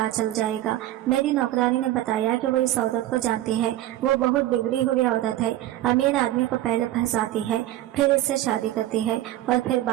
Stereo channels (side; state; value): left; quieter; 14.3 dB